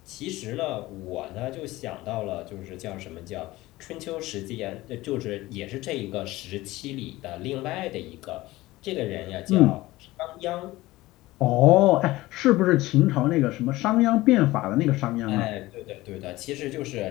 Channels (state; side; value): quieter; right; 18.5 dB